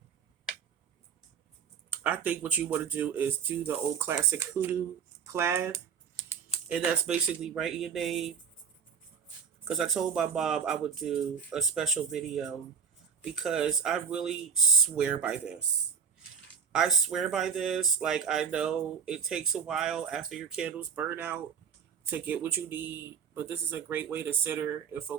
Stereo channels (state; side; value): quieter; left; 6.8 dB